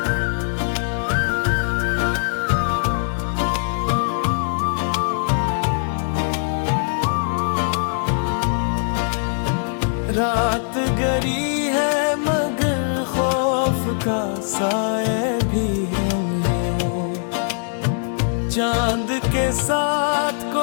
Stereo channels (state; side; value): silent; right; 65 dB below the other